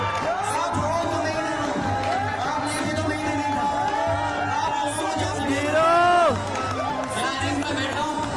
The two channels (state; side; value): identical; both; correlation 1.00